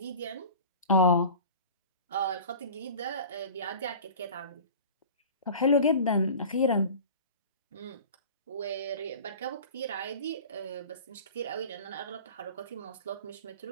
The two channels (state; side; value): inverted; both; correlation -0.38